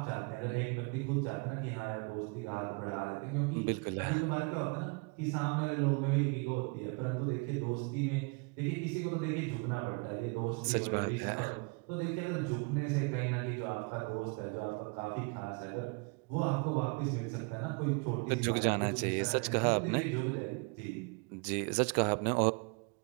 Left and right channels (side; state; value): left; quieter; 31.6 dB